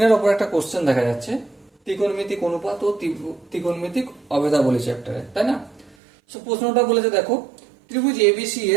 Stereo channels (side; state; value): left; drops out; at 6.0 s